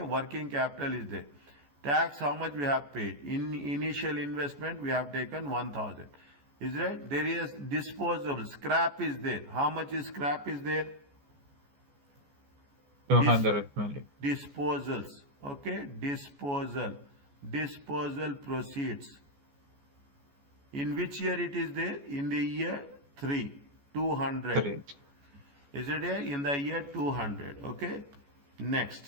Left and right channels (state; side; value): late; left; 14 ms